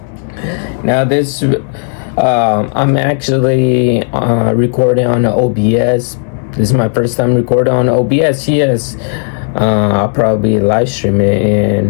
Now this, I'm actually recording on OBS. This is my first time recording on OBS, yes. I'll probably live stream it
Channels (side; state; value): right; silent; 66 dB below the other